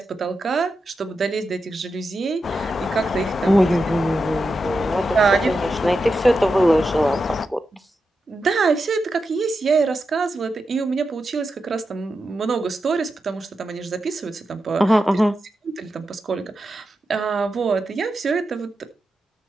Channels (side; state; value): both; normal; correlation 0.88